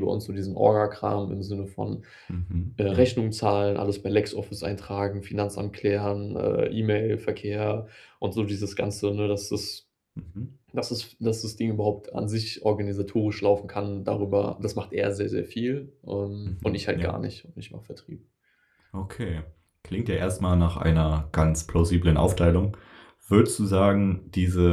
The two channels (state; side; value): identical; both; correlation 1.00